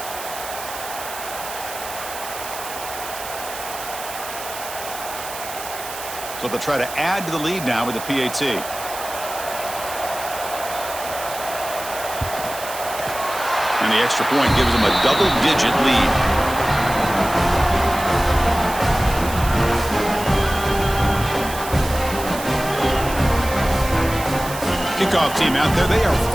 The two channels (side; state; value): right; noise; hiss, 10 dB below the sound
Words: So they'll try to add to the lead now with the PAT. And the extra point gives them a double-digit lead. Kickoff team out there. They are